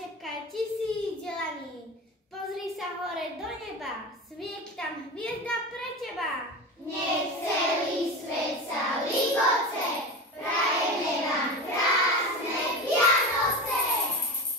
slnka 1000 delaní. Pozri sa hore do neba, svieti tam hviezda pre teba. Nech celý svet sa ligoce, prajeme vám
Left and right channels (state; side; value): normal; both; correlation 0.26